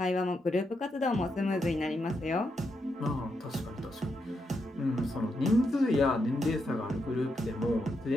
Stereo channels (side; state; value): both; normal; correlation 0.82